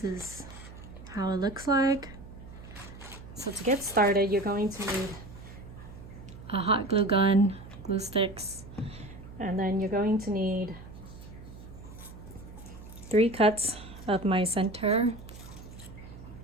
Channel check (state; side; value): noise; right; hum, 15 dB below the sound